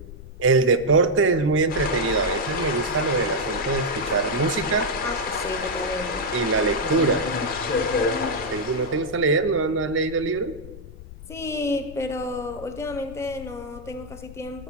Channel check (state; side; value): noise; left; rumble, 16 dB below the sound